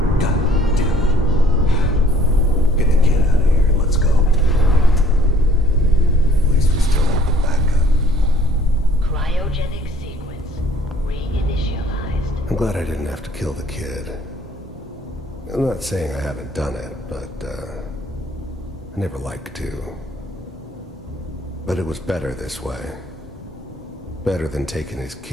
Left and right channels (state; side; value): normal; both; correlation 0.58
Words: God damn it. Get the kid out of here and let's go. At least we still have the backup. Cryogenic sequence reinitialized. I'm glad I didn't have to kill the kid. I'm not saying I haven't done it, but, I never liked to. But it was better this way. Better than taking his